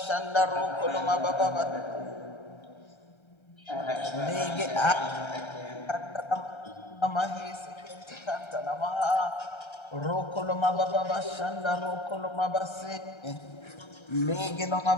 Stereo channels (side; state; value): right; late; 1.3 ms